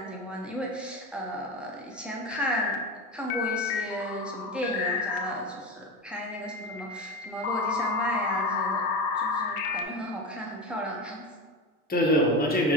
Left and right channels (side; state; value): both; normal; correlation 0.23